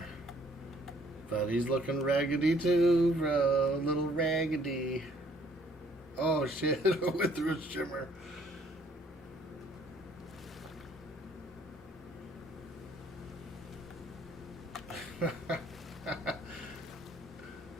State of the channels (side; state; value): both; normal; correlation 0.62